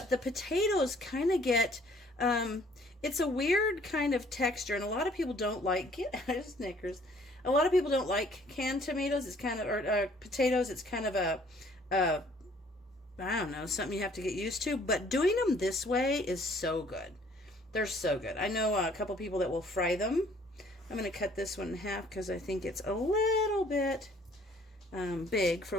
the potatoes kind of get, it's a weird kind of texture, and a lot of people don't like it. Snickers. A lot of people don't like canned tomatoes. It's kind of, or potatoes. It's kind of a, I don't know, something you have to get used to. But doing them this way is so good. They're so good. I know a couple people that will fry them. I'm going to cut this one in half because I think it's a little bit big for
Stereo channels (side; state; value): both; normal; correlation 0.59